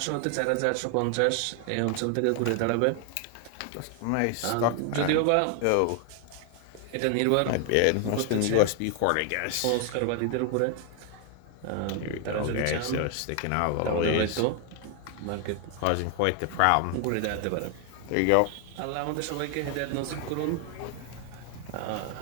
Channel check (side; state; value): both; different; correlation 0.00